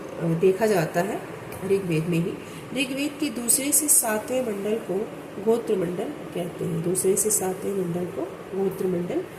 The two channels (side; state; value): both; identical; correlation 1.00